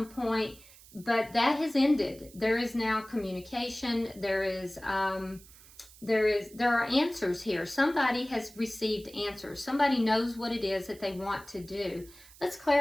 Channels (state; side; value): noise; right; hiss, 22 dB below the sound